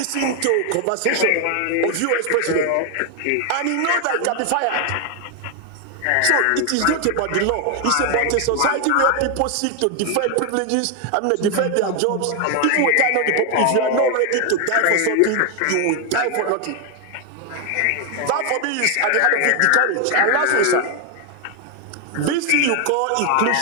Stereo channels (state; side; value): different; both; correlation 0.01